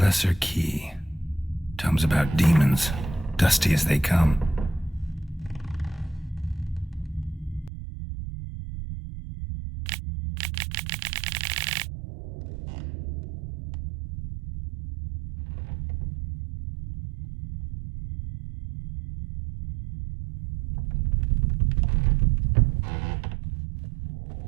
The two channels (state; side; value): drops out; left; at 7.7 s